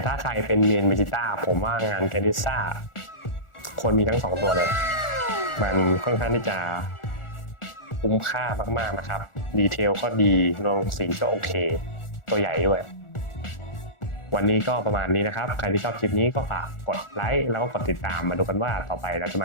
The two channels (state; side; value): late; right; 1.4 ms